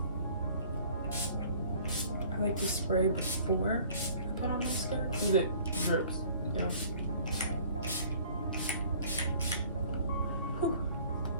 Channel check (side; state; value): both; inverted; correlation -0.52